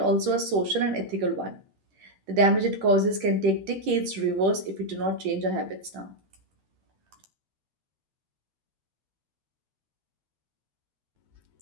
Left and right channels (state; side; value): late; left; 10 ms